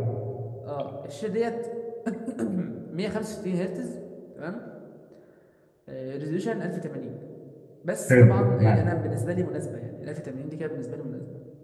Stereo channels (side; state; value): both; identical; correlation 1.00